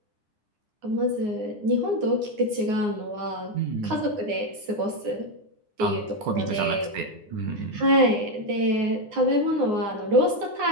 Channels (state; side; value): late; left; 9.5 ms